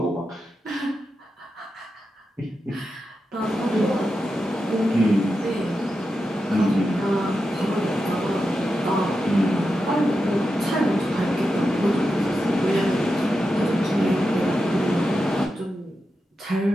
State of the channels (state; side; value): normal; both; correlation 0.89